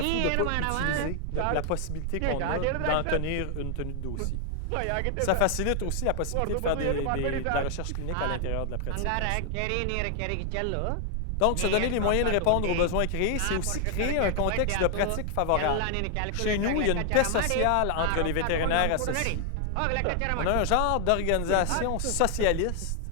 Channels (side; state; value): both; different; correlation 0.00